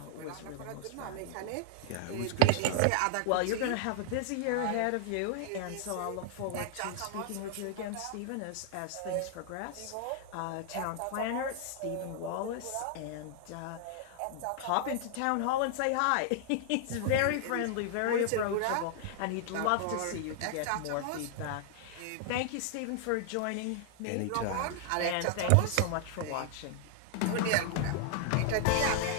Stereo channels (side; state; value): both; different; correlation -0.01